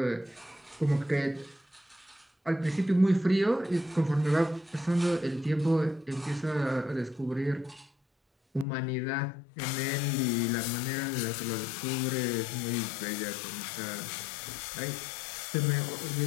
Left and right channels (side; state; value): right; drops out; at 8.7 s